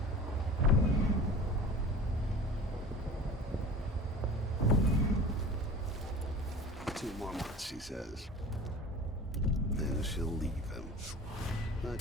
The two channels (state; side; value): normal; both; correlation 0.38